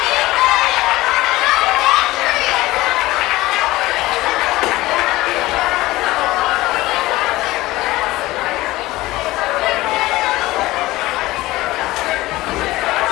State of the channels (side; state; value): right; quieter; 18.4 dB